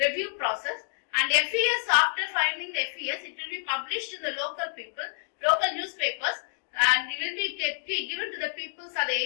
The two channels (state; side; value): silent; right; digital silence